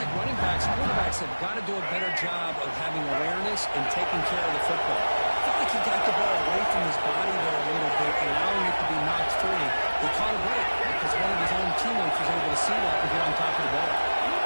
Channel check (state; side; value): inverted; both; correlation -1.00